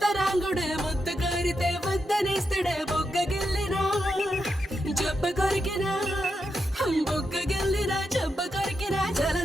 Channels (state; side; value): normal; both; correlation 0.85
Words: ಮುತ್ತು ಕೋರಿದೆ ವಂದನೆಸ್ತಡೆ ಬೊగ్గ ಗೆಲ್ಲಿನ ಜಬ್ಬ ಕೊರಿಕಿನ బొక్క గెల్లినా చెబ్బ కొరికినా